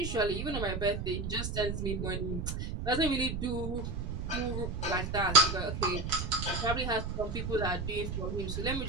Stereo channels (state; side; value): noise; right; rumble, 4 dB below the sound